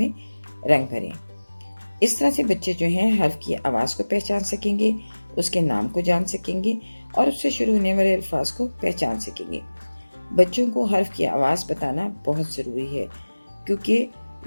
رنگ بھریں. اس طرح سے بچے جو ہیں حرف کی آواز کو پہچان سکیں گے، اس کے نام کو جان سکیں گے اور اس سے شروع ہونے والے الفاظ کو پہچان سکیں گے. بچوں کو حرف کی آواز بتانا بہت ضروری ہے، کیونکہ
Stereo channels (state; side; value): inverted; both; correlation -1.00